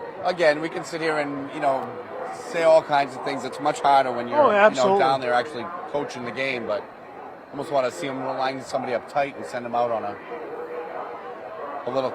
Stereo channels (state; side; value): identical; both; correlation 1.00